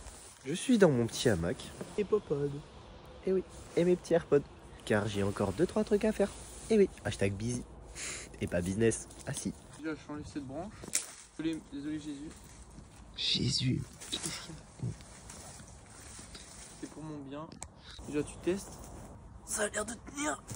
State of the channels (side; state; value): both; identical; correlation 1.00